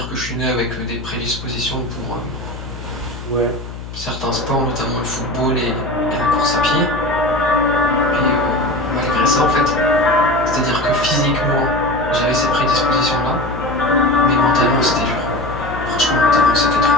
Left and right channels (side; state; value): left; noise; hum, 11 dB below the sound